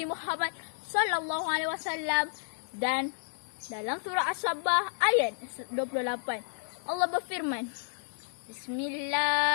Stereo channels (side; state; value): right; silent; 57 dB below the other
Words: Muhammad SAW. Dan dalam surah As-Sabbah ayat 28, Allah berfirman,